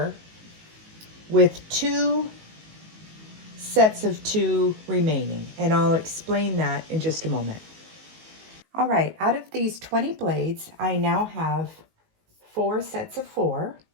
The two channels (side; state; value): left; late; 19 ms